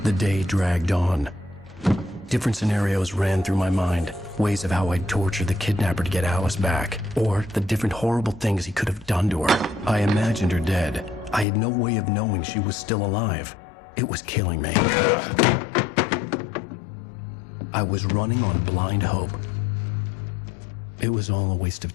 The day dragged on. Different scenarios ran through my mind. Ways of how I'd torture the kidnapper to get Alice back. Or the different horrible things he could have done to her. I imagined her dead. I had no way of knowing she was still alive. It was killing me. I was running on blind hope. It was all a waste of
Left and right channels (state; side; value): drops out; right; at 11.5 s